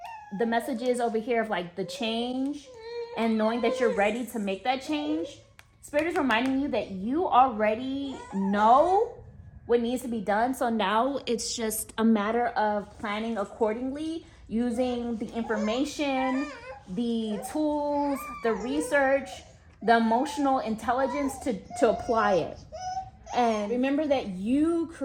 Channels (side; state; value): both; identical; correlation 1.00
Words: the messages over here of like the change and knowing that you're ready to make that change. Spirit is reminding you that you already know what needs to be done. So now it's just a matter of planning accordingly, using the information, the tools, the research, the emotional intelligence to apply it. And remember that you